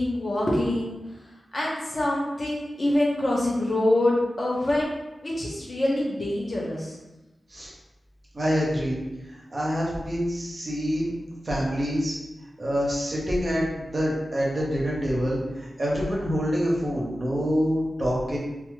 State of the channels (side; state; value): both; normal; correlation 0.93